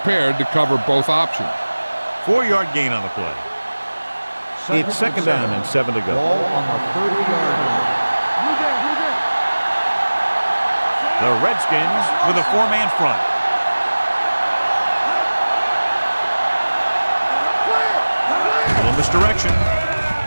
to cover both options. 4-yard gain on the play. It's second down and 7 to go. Ball on the 30-yard line. The Redskins with a 4-man front. Little misdirection.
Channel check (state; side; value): inverted; both; correlation -1.00